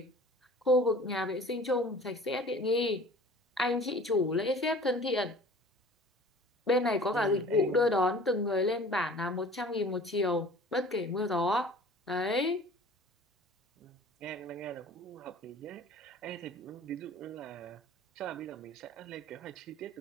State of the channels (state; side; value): normal; both; correlation 0.45